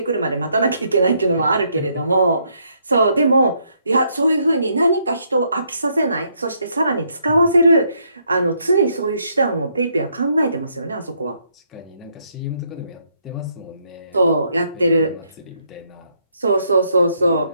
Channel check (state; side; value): inverted; both; correlation -0.73